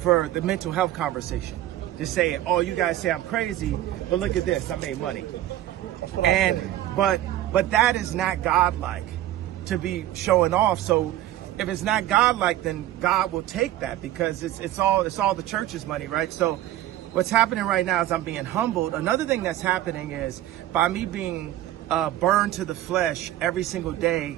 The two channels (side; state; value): left; quieter; 13.8 dB